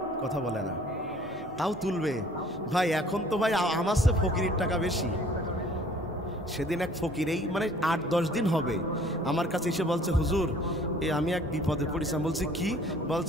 কথা বলে না, তাও তুলবে ভাই। এখন তো ভাই আমার চেয়ে ফকিরের টাকা বেশি। সেদিন এক ফকির, এই মানে 8-10 দিন হবে, আমার কাছে এসে বলছে হুজুর আমি এক বিপদে পড়েছি। বলছি কি?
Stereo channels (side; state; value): both; normal; correlation 0.54